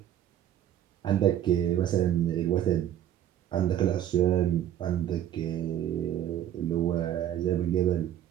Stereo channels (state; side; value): quieter; left; 11.2 dB